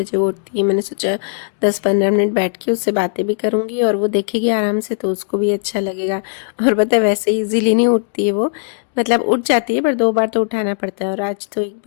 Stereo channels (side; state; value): right; silent; digital silence